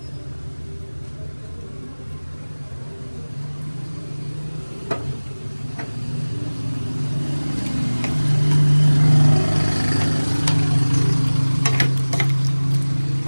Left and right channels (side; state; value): both; inverted; correlation -1.00